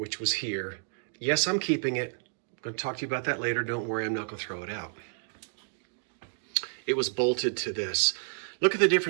was here. Yes, I'm keeping it. I'm going to talk to you about that later. Don't worry, I'm not going to throw it out. It was bolted to this. Look at the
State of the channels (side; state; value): left; silent; digital silence